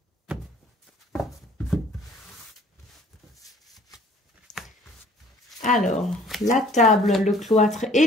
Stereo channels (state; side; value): normal; both; correlation 0.54